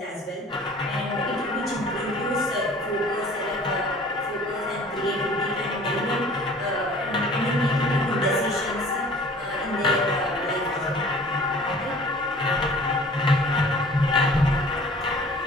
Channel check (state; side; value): normal; both; correlation 0.49